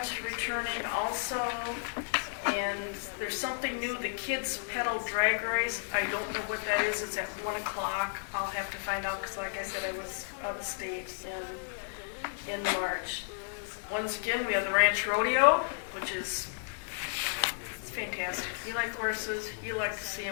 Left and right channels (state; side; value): silent; right; digital silence